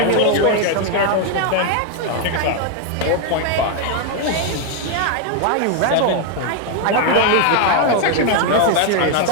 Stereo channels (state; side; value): different; both; correlation 0.01